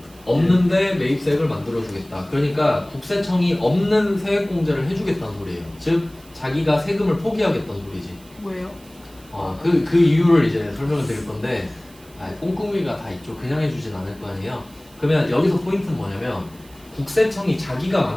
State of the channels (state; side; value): noise; right; hiss, 25 dB below the sound